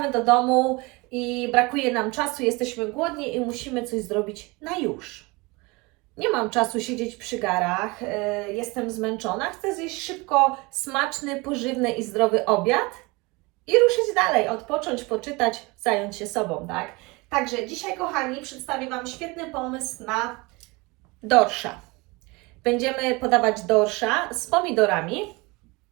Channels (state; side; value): quieter; left; 25.2 dB